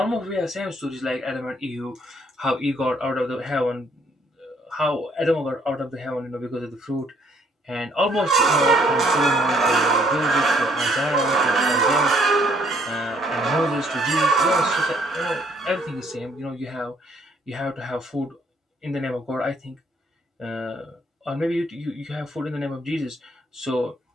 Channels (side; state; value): both; normal; correlation 0.65